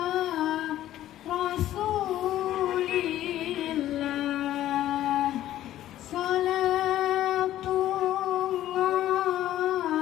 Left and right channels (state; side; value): quieter; right; 13.2 dB